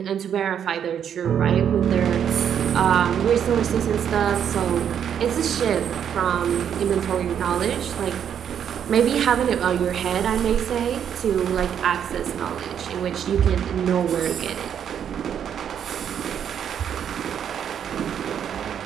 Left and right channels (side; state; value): left; quieter; 8.7 dB